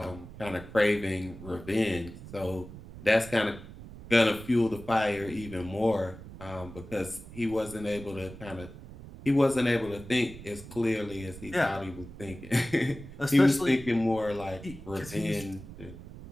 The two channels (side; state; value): right; noise; rumble, 15 dB below the sound